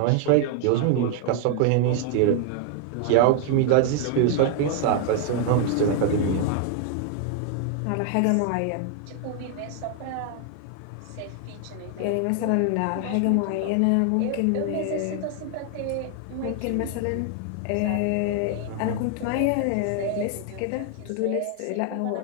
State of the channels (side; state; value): both; different; correlation 0.00